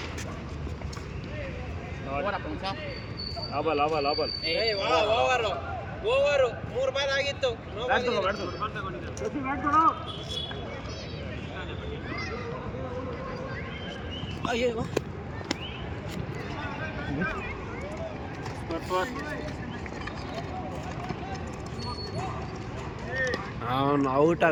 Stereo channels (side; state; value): both; identical; correlation 1.00